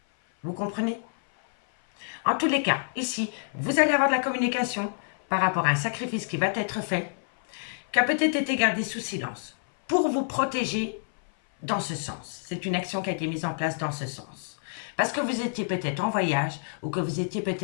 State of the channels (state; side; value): silent; right; 57 dB below the other